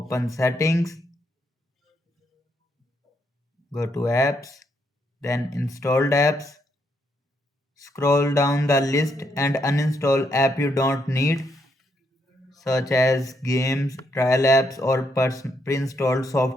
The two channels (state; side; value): normal; both; correlation 0.76